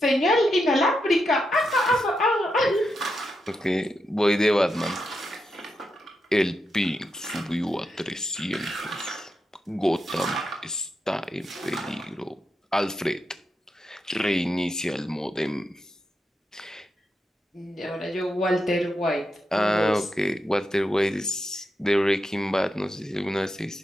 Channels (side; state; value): both; normal; correlation 0.85